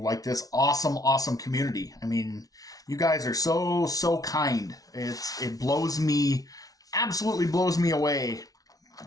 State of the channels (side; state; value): right; late; 0.18 ms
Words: this awesome community. I mean, you guys are so kind. It absolutely blows me away